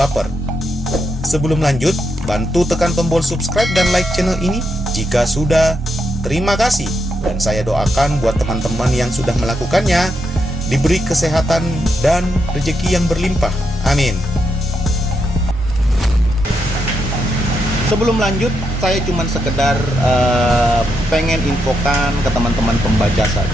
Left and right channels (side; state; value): both; normal; correlation 0.82